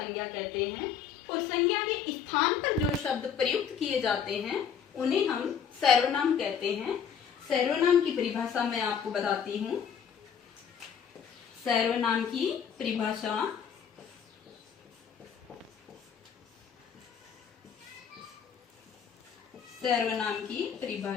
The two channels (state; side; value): quieter; right; 7.6 dB